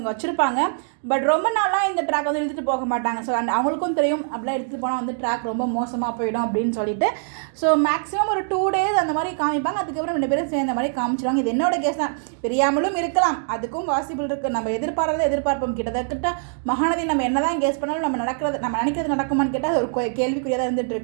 வச்சுருப்பாங்க. பட் ரொம்ப நாளாக இந்த ட்ராக் வந்து இழுத்துட்டு போக மாட்டாங்க. ஸோ அவங்களுக்கும் தெரியும் அப்படிலாம் எடுத்துகிட்டு போனால் வந்து ட்ராக் ரொம்ப மோசமாக போயிடும் அப்படின்னு சொல்லிட்டு. ஸோ மேக்ஸிமம் ஒரு 2 days அந்த மாதிரி காமிப்பாங்க. அதுக்கப்புறம் 2 பேரும் சேர்ந்த மாதிரி காமிச்சிடுவாங்க. இது என்னோட கேஸ் தான். பிரியாமலும் இருக்கலாம், அதுக்கும் பாசிபிள் இருக்குது. நம்ம எதிர்பார்ப்போம். கிட்டத்தட்ட மகாநதி நம்ம என்ன தான் கேஸ் பண்ணாலும் நம்ம நினைக்கிறது நடக்குமான்னு கேட்டால் அது ஒரு கேள்விக்குறியாக தான் இருந்துகிட்டு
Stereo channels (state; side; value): silent; left; digital silence